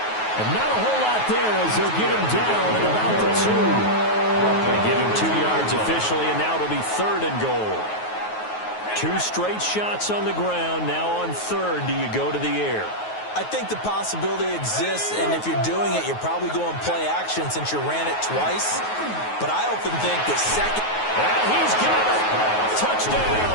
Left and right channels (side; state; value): right; late; 9.4 ms